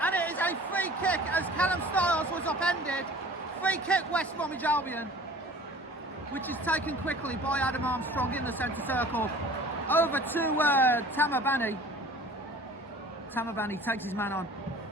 And it is a free kick as Callum Stiles was upended. Free kick West Bromwich Albion, which is taken quickly by Adam Armstrong in the centre circle. Over to Tama Bani. Tama Bani takes his man on.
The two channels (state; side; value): normal; both; correlation 0.46